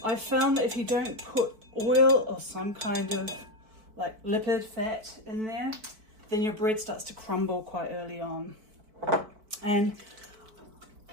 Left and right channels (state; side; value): late; left; 4.5 ms